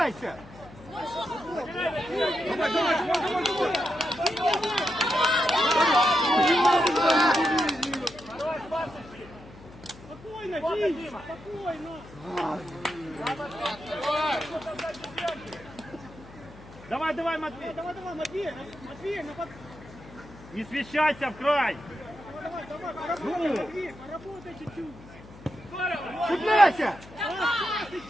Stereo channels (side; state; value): left; noise; hum, 19 dB below the sound